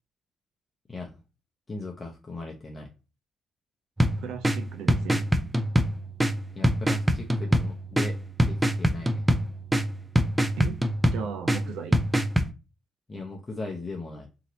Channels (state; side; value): normal; both; correlation 0.91